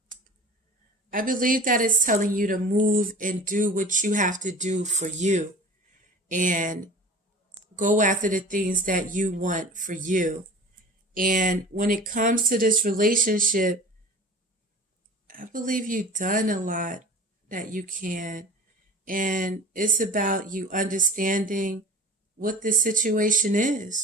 I believe that it's telling you to move and do what you have to do for you and go after the things that you want for you. And when it comes to this relationship, I believe you've done a lot that you can. And it's about you understanding what the situation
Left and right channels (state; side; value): normal; both; correlation 0.39